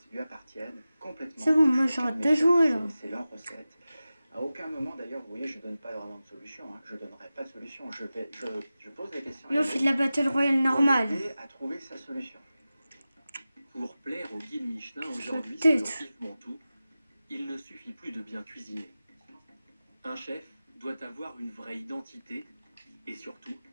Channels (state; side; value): inverted; both; correlation -0.95